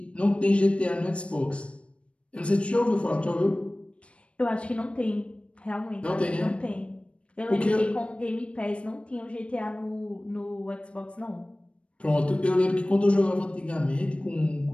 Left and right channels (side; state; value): right; late; 0.060 ms